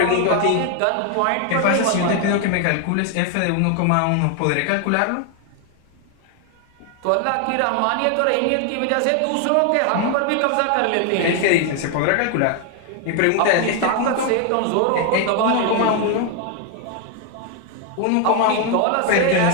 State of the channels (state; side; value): different; both; correlation 0.01